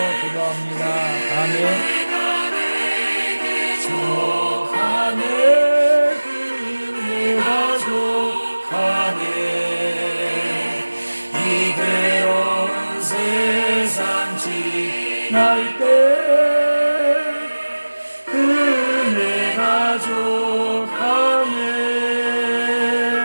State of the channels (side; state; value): both; inverted; correlation -1.00